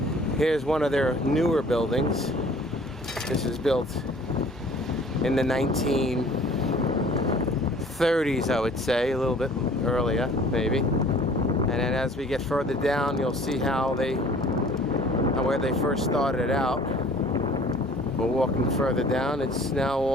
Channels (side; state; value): both; normal; correlation 0.51